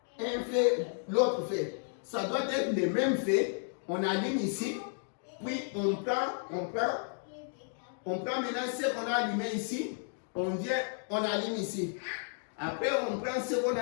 un feu, l'autre feu. Ça doit être le même feu. On allume ici, puis on prend maintenant ce qu'on a allumé ici, on vient, on allume ici. Après, on prend ce qu'on a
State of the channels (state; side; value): silent; right; 56 dB below the other